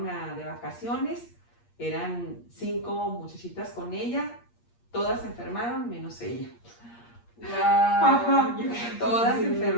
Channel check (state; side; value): late; right; 8.5 ms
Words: de vacaciones, eran 5 muchachitas con ella, todas se enfermaron menos ella. Wow. Ajá, todas se